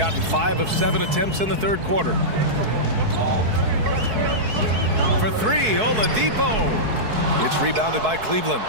5 of 7 attempts in the third quarter. For 3, Oladipo. It's rebounded by Cleveland.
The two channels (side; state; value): left; late; 4.6 ms